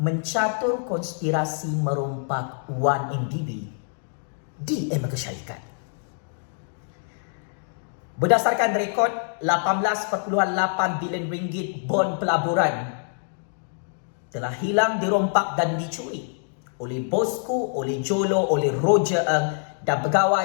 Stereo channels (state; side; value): silent; right; digital silence